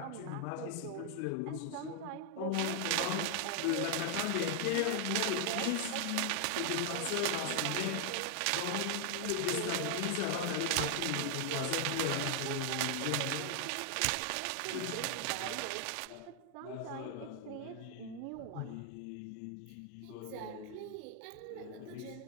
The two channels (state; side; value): different; both; correlation 0.00